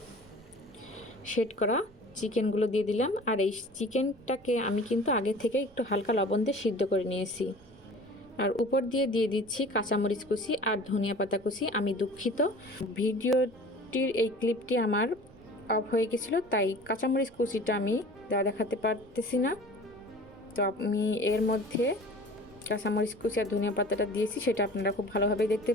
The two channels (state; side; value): noise; right; rumble, 27 dB below the sound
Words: সেট করা চিকেনগুলো দিয়ে দিলাম। আর এই চিকেনটাকে আমি কিন্তু আগে থেকে একটু হালকা লবণ দিয়ে সিদ্ধ করে নিয়েছি। আর উপর দিয়ে দিচ্ছি কাঁচামরিচ কুচি আর ধনিয়া পাতা কুচি। আমি দুঃখিত, ভিডিওটির এই ক্লিপটি আমার অফ হয়ে গেছিলো, তাই কাঁচামরিচ কুচিটা আমি দেখাতে পারতেছি না। তো আমি এর মধ্যে কাঁচামরিচ কুচি আর ধনিয়া পাতাটা দিয়েছি, সেটা আপনারা খুব ভালোভাবে দেখতে